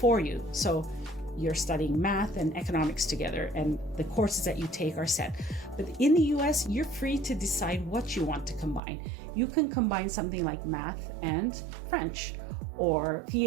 you. So you're studying math and economics together, and the courses that you take are set. But in the US, you're free to decide what you want to combine. You can combine something like math and French, or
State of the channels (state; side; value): drops out; left; at 8.8 s